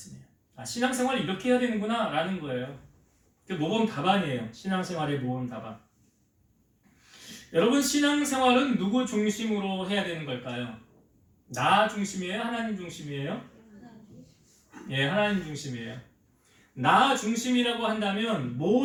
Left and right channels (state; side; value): identical; both; correlation 1.00